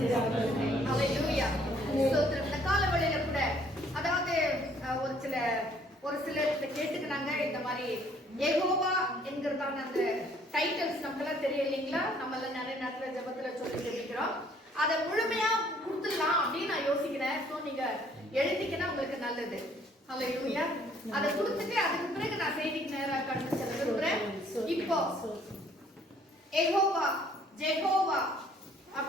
ஹல்லேலூயா. ஸ்தோத்திரம். இந்த கால வேளையில கூட அதாவது ஒரு சிலர் கேட்டுக்கிறாங்க, இந்த மாதிரி யெகோவா என்கிறதான அந்த டைட்டில்ஸ் நமக்கெல்லாம் தெரியும் இல்லைங்களா? நம்மள நிறைய நேரத்துல ஜெபத்துல சொல்லி கேட்கிறோம். அதை முழுமையா கொடுத்துடலாம் அப்படின்னு நான் யோசிக்கிறேன். ஸோ நீங்க எழுதிக்கினா உங்களுக்கு நல்லது. ஹல்லேலூயா. அதை கொடுத்துட்டு அதுக்கு பிறகு நான் செய்திக்கு நேராக கடந்து செல்ல விரும்புறேன். இப்போ யெகோவா ஜெகோவா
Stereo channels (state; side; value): normal; both; correlation 0.61